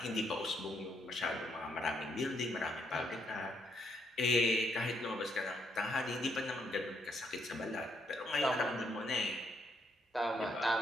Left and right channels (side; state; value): both; normal; correlation 0.74